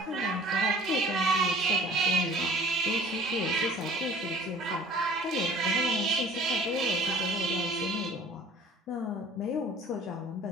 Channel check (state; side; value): normal; both; correlation 0.49